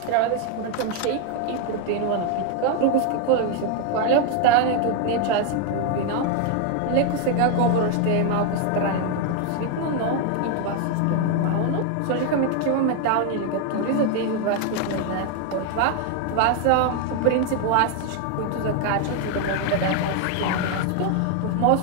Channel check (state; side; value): different; both; correlation 0.01